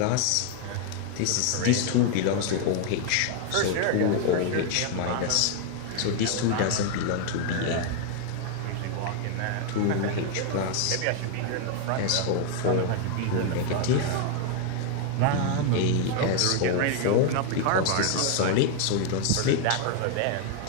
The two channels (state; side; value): different; both; correlation 0.01